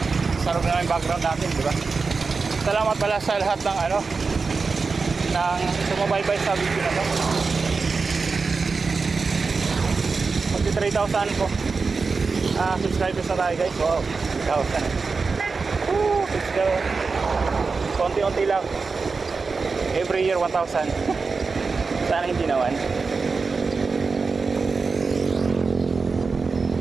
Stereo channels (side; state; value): left; quieter; 4.5 dB